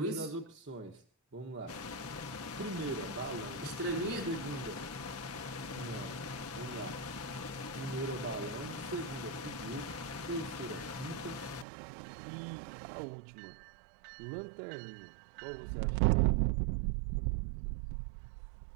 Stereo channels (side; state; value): left; drops out; at 11.7 s